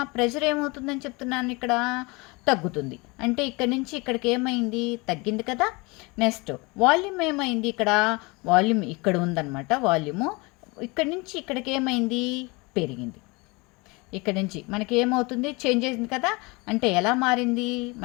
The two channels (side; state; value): right; quieter; 26.3 dB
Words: ప్రెషర్ ఏమవుతుందని చెప్తున్నాను ఇక్కడ? తగ్గుతుంది. అంటే ఇక్కడ నుంచి ఇక్కడికి ఏమైంది? తగ్గింది కదా. నెక్స్ట్ వాల్యూమ్ ఏమైంది ఇక్కడ? వాల్యూమ్ ఇక్కడ ఉందన్నమాట. వాల్యూము ఇక్కడ నుంచి ఇక్కడికి ఏమైంది? పెరిగింది. ఇక్కడ నుంచి మనకి ఏమవుతుంది? చేంజ్ అయింది కదా. అంటే ఎలా మారింది?